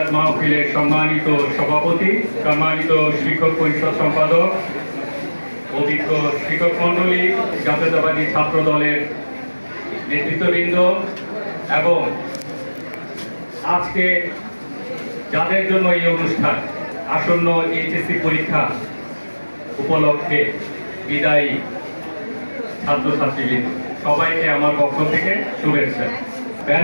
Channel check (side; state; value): both; inverted; correlation -1.00